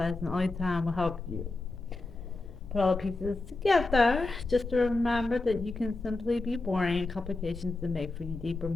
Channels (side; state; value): right; quieter; 3.2 dB